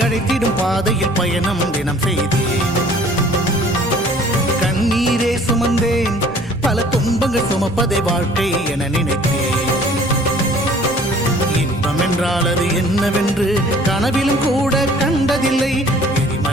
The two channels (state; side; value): normal; both; correlation 0.53